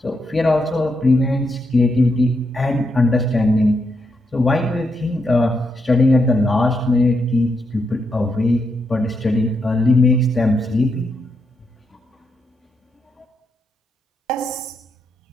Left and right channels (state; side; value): normal; both; correlation 0.81